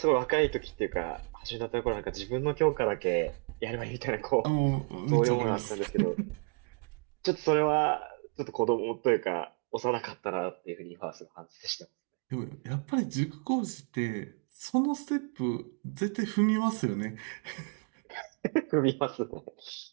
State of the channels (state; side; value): quieter; left; 39.8 dB